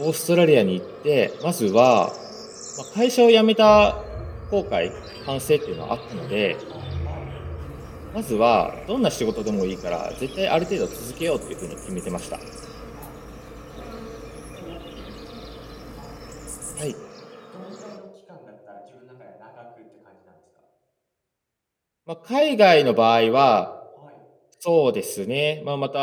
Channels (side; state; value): both; identical; correlation 1.00